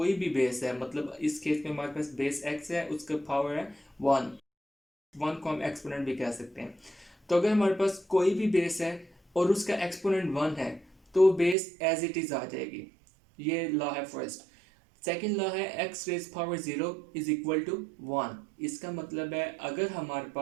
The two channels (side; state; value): left; drops out; at 11.6 s